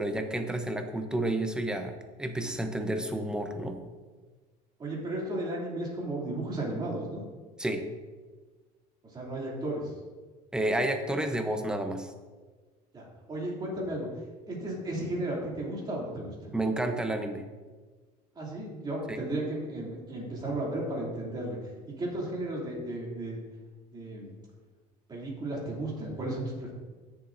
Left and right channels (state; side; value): normal; both; correlation 0.60